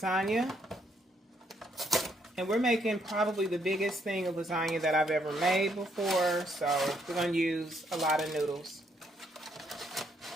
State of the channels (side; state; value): both; normal; correlation 0.72